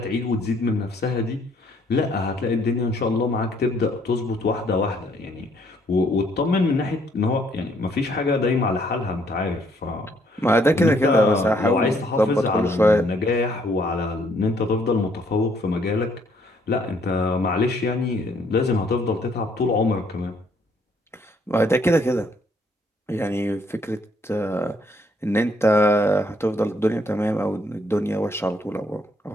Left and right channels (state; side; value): normal; both; correlation 0.67